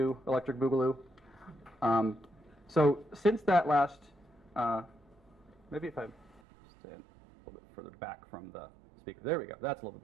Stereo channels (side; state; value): left; drops out; at 6.4 s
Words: Electric Boogaloo. So since that last, maybe if I stand a little bit further back from the speaker. There we go. That's a little